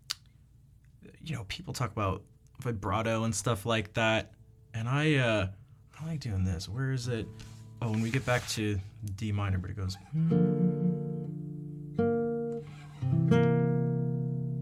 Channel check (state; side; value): identical; both; correlation 1.00